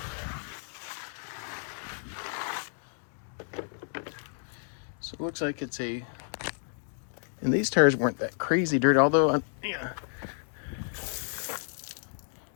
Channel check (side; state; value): right; silent; 57 dB below the other